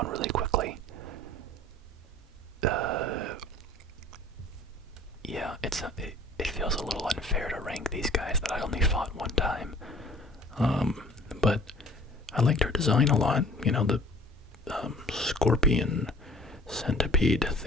really quickly. Yeah, it feels a little unfair to rank these guys that I only fought one time. But I liked her design a lot. You know, the scorpion centipede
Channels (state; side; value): normal; both; correlation 0.50